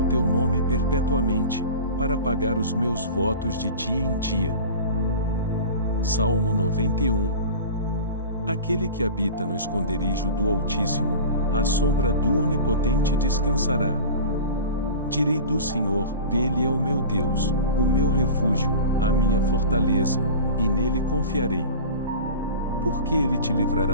teu nome perpetuamente, para pagar os meus votos de dia em dia. Salmo 91. Aquele que habita no esconderijo do Altíssimo, à sombra do Onipotente descansará. Direi do Senhor, Ele é o meu Deus, o meu refúgio, a minha fortaleza, e nele confiarei. Porque Ele te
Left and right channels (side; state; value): both; inverted; correlation -0.35